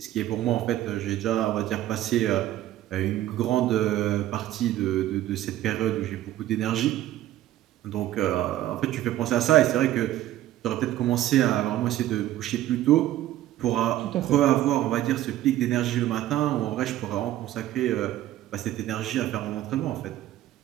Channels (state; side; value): quieter; left; 13.7 dB